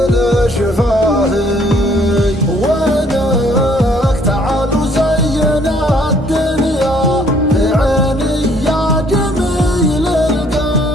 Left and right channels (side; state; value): both; normal; correlation 0.63